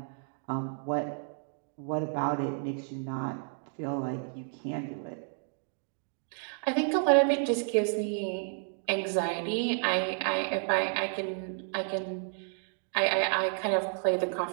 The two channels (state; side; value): silent; left; 57 dB below the other